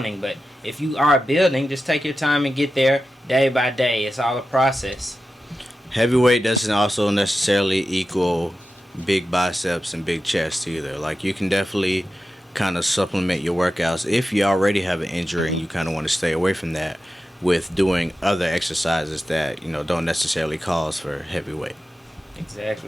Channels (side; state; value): both; normal; correlation 0.92